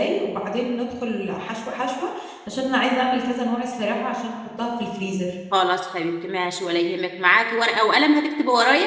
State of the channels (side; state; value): both; identical; correlation 1.00